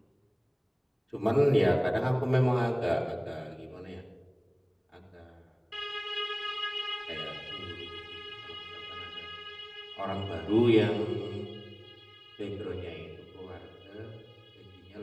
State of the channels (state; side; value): identical; both; correlation 1.00